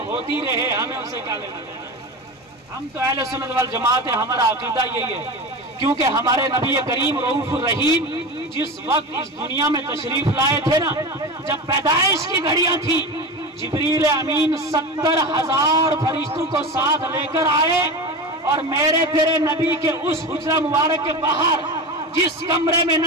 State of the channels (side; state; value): both; normal; correlation 0.26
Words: ہوتی رہے، ہمیں اسے کیا لینا دینا، ہم تو اہل سنت والجماعت ہیں، ہمارا عقیدہ یہی ہے، کیونکہ ہمارے نبی کریم رؤوف الرحیم جس وقت اس دنیا میں تشریف لائے تھے نا، جب پیدائش کی گھڑیاں تھی، جبریل امین 70,000 فرشتوں کو ساتھ لے کر آئے، اور میرے تیرے نبی کے اس حجرہ مبارک کے باہر جس کمرے میں